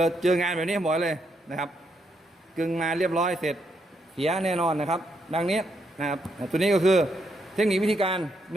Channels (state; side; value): normal; both; correlation 0.77